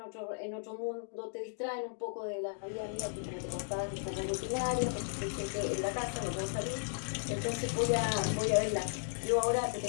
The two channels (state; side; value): silent; right; digital silence